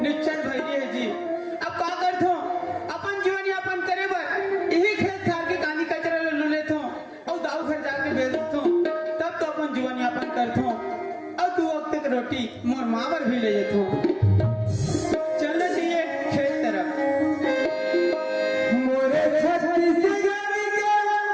निश्चय भैया है जी। अब का करथो अपन जीवन यापन करे बर यही खेत खार के कानी कचरा ले लेथो और दाऊ घर जाके बेच देथो, तब तो अपन जीवन यापन करथो और 2 वक्त की रोटी मोर माँ बर भी ले जेथो। चलना चाहिए खेत तरफ। मोरे छत्तीसगढ़ के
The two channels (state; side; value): identical; both; correlation 1.00